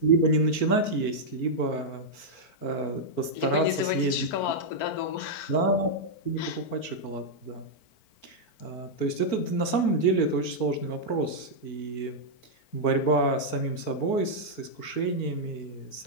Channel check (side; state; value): right; late; 4.5 ms